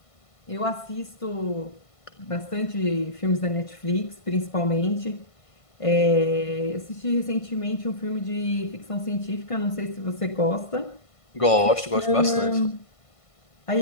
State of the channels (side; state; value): right; late; 1.5 ms